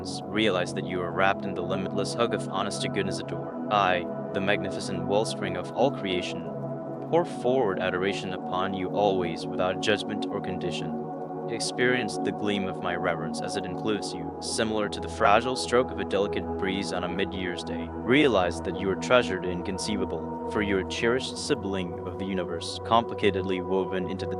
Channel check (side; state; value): both; identical; correlation 1.00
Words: realize that you are wrapped in the limitless hug of honest to goodness adore. I, the magnificent wellspring of all creation, pour forward adoration upon you always without judgment or condition. Experience the gleam of my reverence as it includes you, similar to the fragile stroke of a delicate breeze on a mid-year's day. Realize that you are treasured and inconceivable, for you are a cherished sibling of the universe, complicatedly woven into the